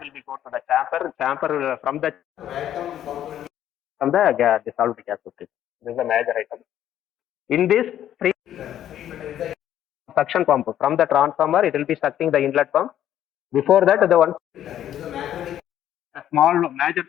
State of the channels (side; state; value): right; quieter; 11.2 dB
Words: be go to the chamber. Chamber from the dissolved gas. This is a major item. In this free suction pump from the transformer, it will be sucking the inlet pump. Before that, the one small major